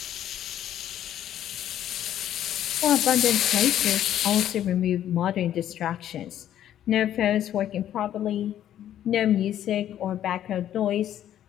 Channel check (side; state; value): right; quieter; 11.3 dB